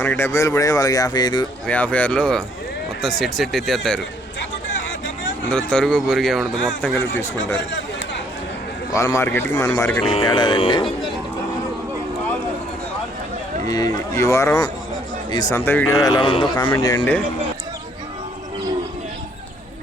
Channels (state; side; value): normal; both; correlation 0.65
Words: 70,000 పడే వాళ్ళకి 55-56లో మొత్తం సెట్ ఎత్తేస్తారు. అందులో తరుగు బొరుగు ఏముండదు, మొత్తం కలిపి తీసుకుంటారు. వాళ్ళ మార్కెట్కి మన మార్కెట్కి తేడాదండి. ఈ వారం ఈ సంత వీడియో ఎలా ఉందో కామెంట్ చేయండి.